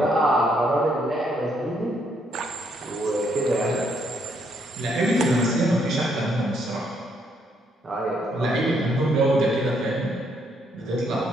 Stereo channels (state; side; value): normal; both; correlation 0.72